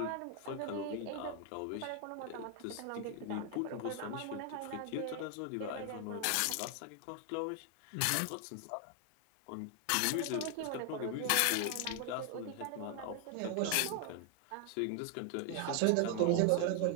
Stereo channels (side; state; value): both; different; correlation 0.00